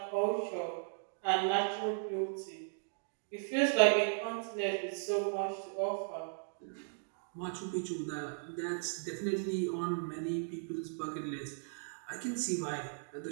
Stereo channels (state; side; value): silent; left; digital silence